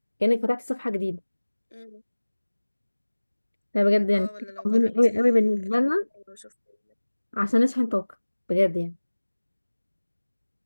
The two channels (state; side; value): inverted; both; correlation -1.00